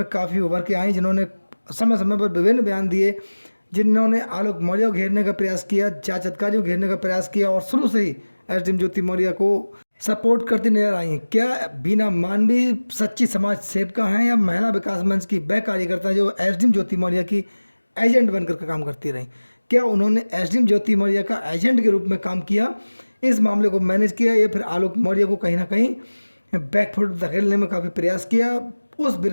काफ़ी उभर के आई, जिन्होंने समय समय पर विभिन्न बयान दिए, जिन्होंने आलोक मौर्य को घेरने का प्रयास किया, जांच अधिकारी को घेरने का प्रयास किया और शुरू से ही एसडीएम ज्योति मौर्य को सपोर्ट करती नजर आई। क्या बीना मानवी सच्ची समाज सेविका हैं या महिला विकास मंच की वह कार्यकर्ता जो एसडीएम ज्योति मौर्य की एजेंट बनकर के काम करती रहीं? क्या उन्होंने एसडीएम ज्योति मौर्य का एजेंट के रूप में काम किया, इस मामले को मैनेज किया, या फिर आलोक मौर्य को कहीं ना कहीं बैकफुट धकेलने में काफ़ी प्रयास किया? उस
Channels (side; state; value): both; inverted; correlation -1.00